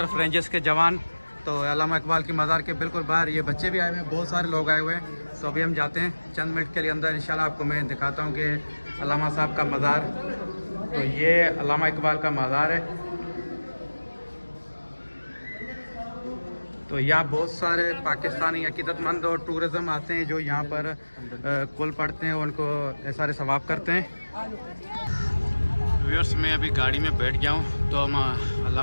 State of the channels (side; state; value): both; inverted; correlation -1.00